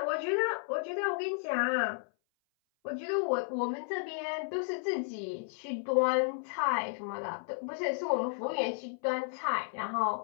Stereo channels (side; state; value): right; silent; 56 dB below the other